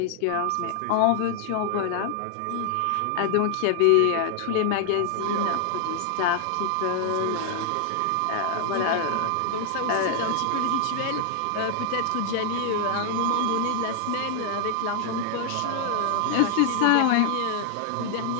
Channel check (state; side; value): different; both; correlation 0.00